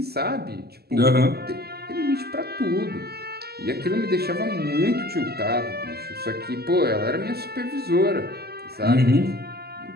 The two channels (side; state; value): left; late; 0.46 ms